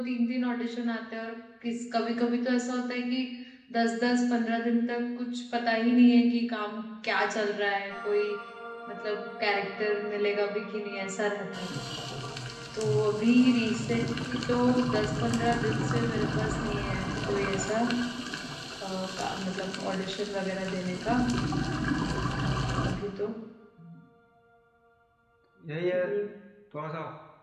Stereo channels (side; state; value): both; identical; correlation 1.00